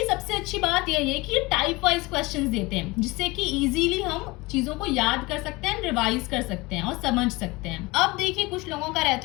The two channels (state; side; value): quieter; right; 22.9 dB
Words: सबसे अच्छी बात यह है कि टाइप वाइज क्वेश्चंस देते हैं, जिससे कि इजीली हम चीजों को याद कर सकते हैं, रिवाइज कर सकते हैं और समझ सकते हैं। अब देखिए कुछ लोगों का